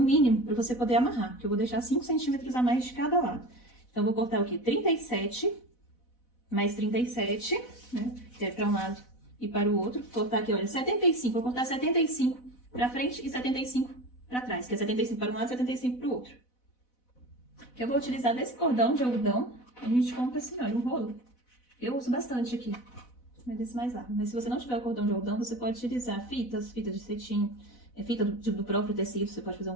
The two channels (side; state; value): right; late; 4.0 ms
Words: mínimo, para você poder amarrar. Que eu vou deixar 5 centímetros a mais de cada lado. Então, eu vou cortar o quê? 37, mais 37, né? Que é para um lado e para o outro. Vou cortar aqui, olha, 75. Vou cortar 75 para frente e 75 para trás. Que é 75 para um lado e 75 para o outro. Que eu vou utilizar desse cordão de algodão. A gente compra assim, olha, um rolo. Eu uso bastante aqui. Mas desse mais largo. Mas se você não tiver o cordão de algodão, você pode utilizar fitas de cetim, fita do próprio tecido. Você pode fazer um